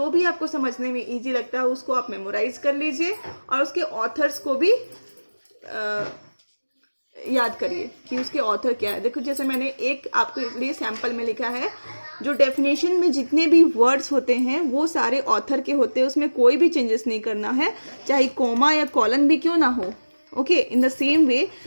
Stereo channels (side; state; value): both; inverted; correlation -1.00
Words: भी आपको समझने में इजी लगता हो, उसको आप मेमोराइज कर लीजिए और उसके ऑथर्स को भी याद करिए कि उसके ऑथर क्या है. देखो, जैसे मैंने एक आपके लिए सैंपल में लिखा है, जो डेफिनेशन में जितने भी वर्ड्स होते हैं वो सारे ऑथर के होते हैं, उसमें कोई भी चेंजेस नहीं करना है, चाहे कोमा या कॉलन भी क्यों ना हो. Okay, in the same way